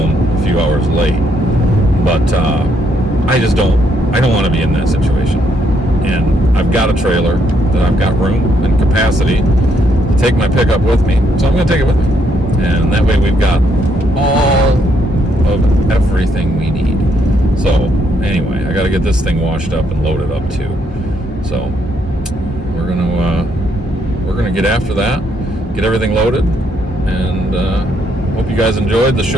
a few hours late. But I don't want to be in that situation. And I've got a trailer that I've got room and capacity to take my pickup with me, so I'm going to take it with me. And that way we've got all of everything we need. So anyway, I got to get this thing washed up and loaded up too. So we're gonna get after that, get everything loaded, and hope you guys enjoyed the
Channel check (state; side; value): normal; both; correlation 0.73